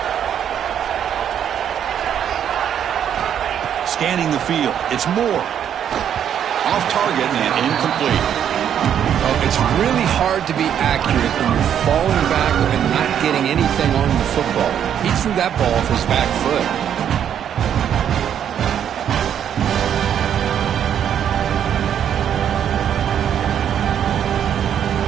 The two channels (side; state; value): left; quieter; 9.2 dB